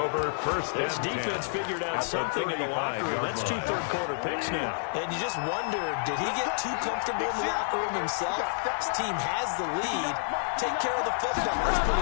first. This defense figured out something in the locker room. That's 2 third-quarter picks now. And you just wonder, did he get too comfortable in the locker room himself? His team has the lead. Take care of the football. That's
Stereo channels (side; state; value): right; silent; digital silence